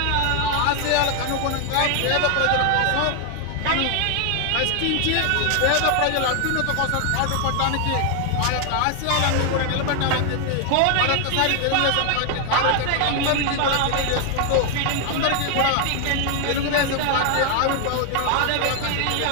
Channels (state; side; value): different; both; correlation 0.00